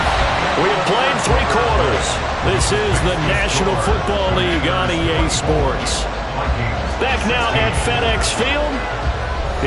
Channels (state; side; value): identical; both; correlation 1.00